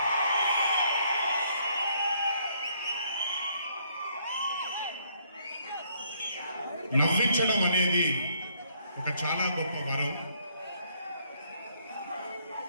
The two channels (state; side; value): inverted; both; correlation -0.67